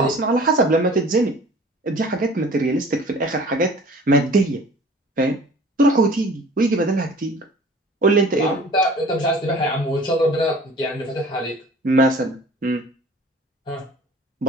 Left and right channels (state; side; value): normal; both; correlation 0.47